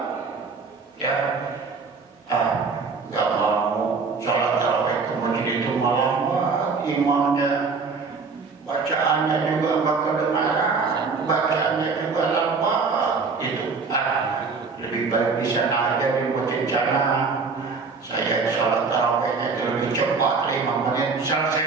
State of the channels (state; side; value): quieter; left; 4.7 dB